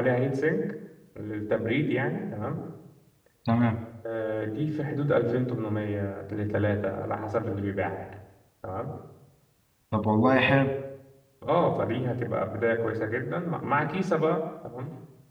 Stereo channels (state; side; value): identical; both; correlation 1.00